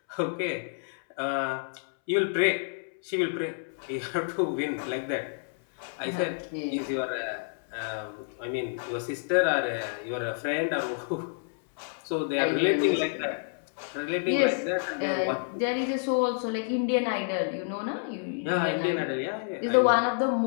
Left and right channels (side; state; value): right; silent; 59 dB below the other